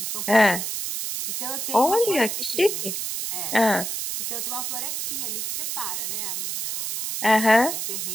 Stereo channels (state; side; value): noise; right; hiss, 3 dB below the sound